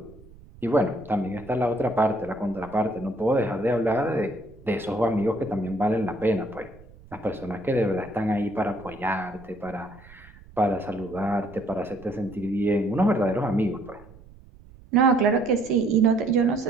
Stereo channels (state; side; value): noise; right; rumble, 22 dB below the sound